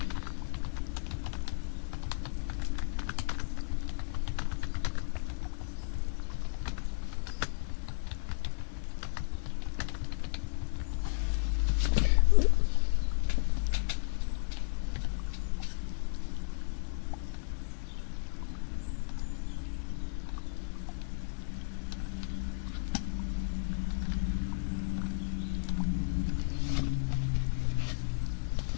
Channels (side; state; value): right; silent; digital silence